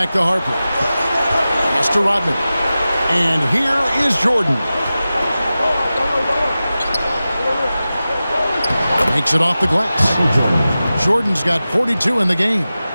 to Harper. Pass to Rodman. And here is Jordan. Makes it off the glass. Jordan's got 42 in the game.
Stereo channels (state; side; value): inverted; both; correlation -0.95